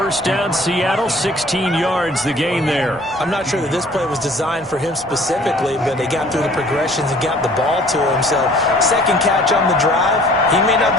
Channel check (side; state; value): both; normal; correlation 0.53